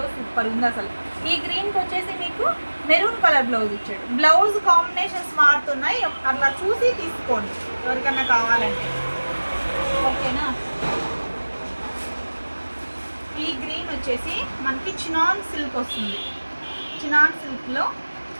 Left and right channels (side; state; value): both; inverted; correlation -1.00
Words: సూపర్ ఉంది అసలు. ఈ గ్రీన్కి వచ్చేసి మీకు మెరూన్ కలర్ బ్లౌజ్ ఇచ్చాడు. బ్లౌజ్ కాంబినేషన్స్ మారుతున్నాయి, అట్లా చూసి తీసుకోండి ఎవరికన్నా కావాలంటే. ఓకేనా? ఈ గ్రీన్ వచ్చేసి మనకి చినాన్ సిల్క్ వస్తుంది. చినాన్ సిల్క్లో